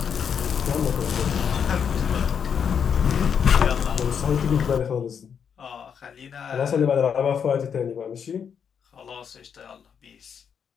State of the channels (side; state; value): right; quieter; 7.3 dB